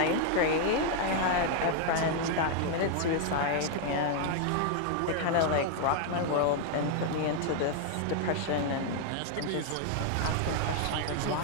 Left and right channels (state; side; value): different; both; correlation 0.00